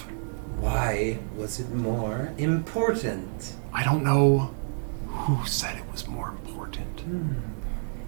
Why was it more important? I don't know who said it was more important.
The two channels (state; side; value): silent; left; digital silence